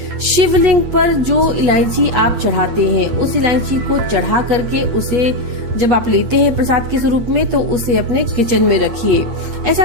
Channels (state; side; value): late; left; 8.5 ms